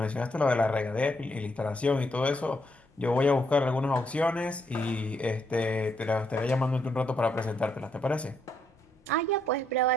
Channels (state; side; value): normal; both; correlation 0.75